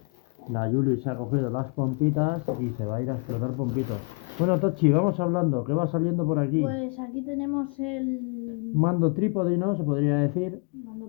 La Yuli se ha cogido las pompitas y se va a ir a explotar pompitas. Bueno, Tochi, vamos hablando, ¿qué va saliendo por aquí? Pues aquí tenemos el... mando trípode, ¿no? Se podría decir.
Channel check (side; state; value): right; quieter; 35.6 dB